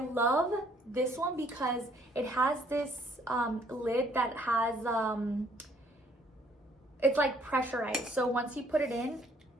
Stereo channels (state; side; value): normal; both; correlation 0.64